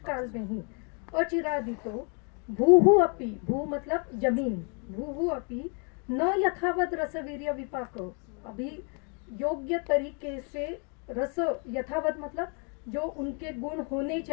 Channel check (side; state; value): right; quieter; 37.2 dB